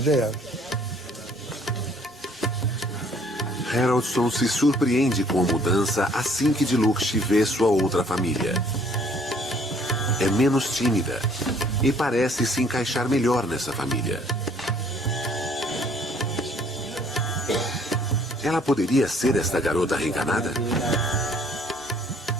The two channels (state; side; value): normal; both; correlation 0.60